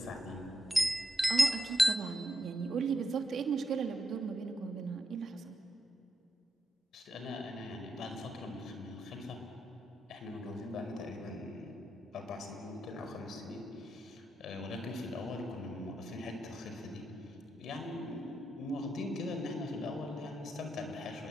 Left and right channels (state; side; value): normal; both; correlation 0.84